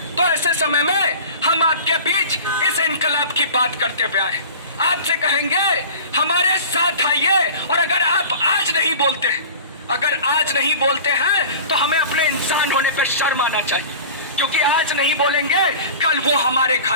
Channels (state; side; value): inverted; both; correlation -0.38